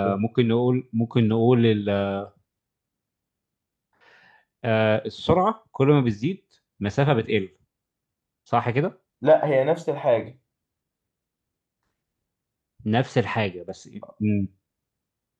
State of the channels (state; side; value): identical; both; correlation 1.00